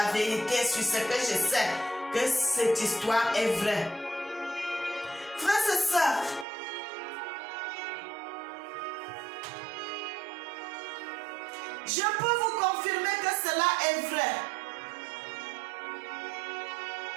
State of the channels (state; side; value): drops out; left; at 6.5 s